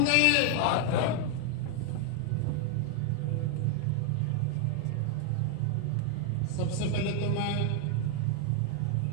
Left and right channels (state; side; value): different; both; correlation 0.00